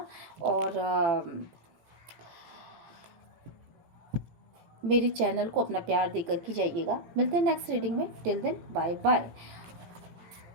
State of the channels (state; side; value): late; left; 17 ms